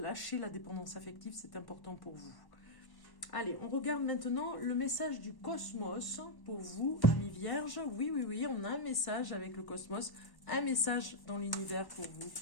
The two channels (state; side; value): late; right; 1.1 ms